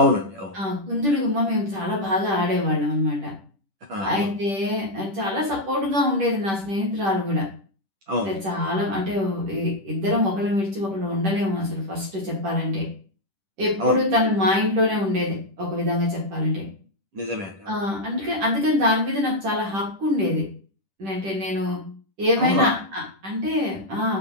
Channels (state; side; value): late; left; 10 ms